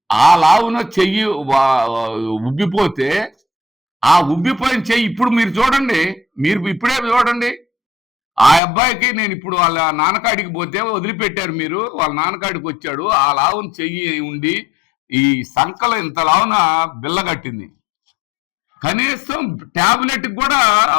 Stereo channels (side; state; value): right; drops out; at 8.6 s